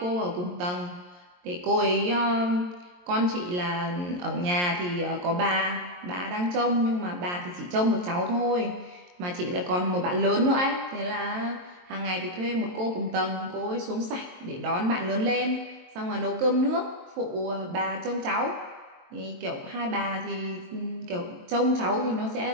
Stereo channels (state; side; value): late; left; 22 ms